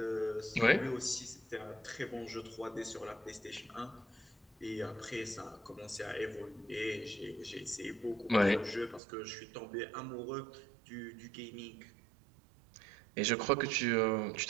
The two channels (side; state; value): left; drops out; at 9.0 s